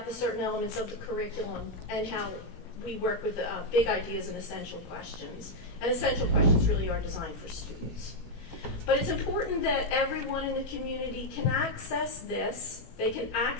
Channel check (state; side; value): late; right; 17 ms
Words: the certain elements of the curriculum and how we work with big ideas and essential questions. And essential questions really are designed for students. But it's important that everyone in the community can access this. They can